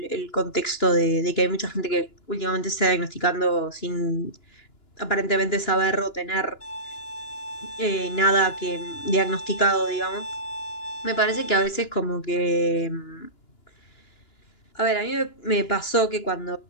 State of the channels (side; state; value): right; late; 2.9 ms